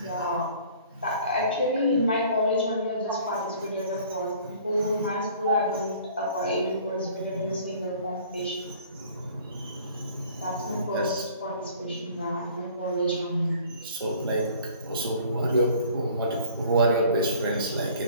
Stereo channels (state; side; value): inverted; both; correlation -0.52